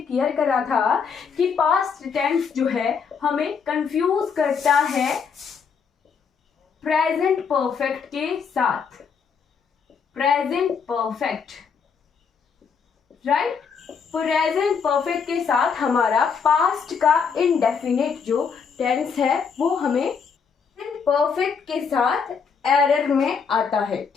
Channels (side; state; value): right; quieter; 6.1 dB